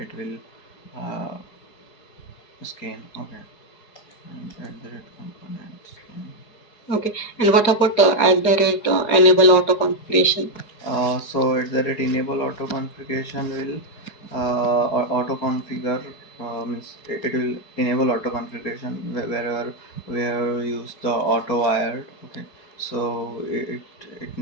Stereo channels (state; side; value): late; right; 4.7 ms